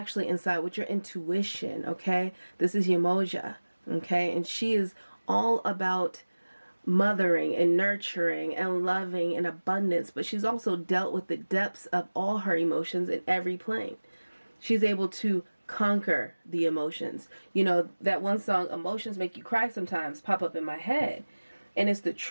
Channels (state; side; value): inverted; both; correlation -1.00